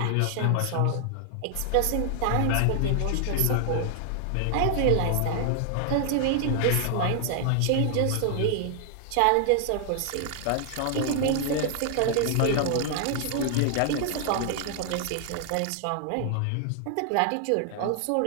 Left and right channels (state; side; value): different; both; correlation 0.00